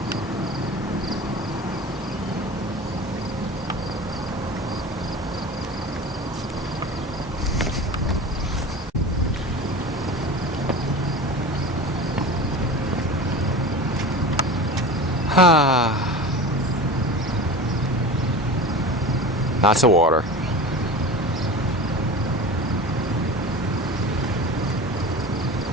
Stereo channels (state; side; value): normal; both; correlation 0.32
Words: Lots of water.